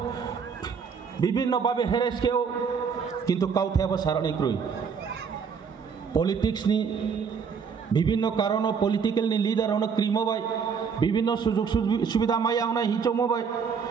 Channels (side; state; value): left; quieter; 6.2 dB